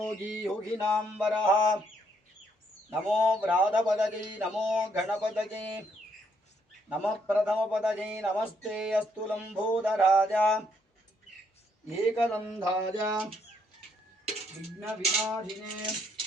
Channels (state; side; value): normal; both; correlation 0.72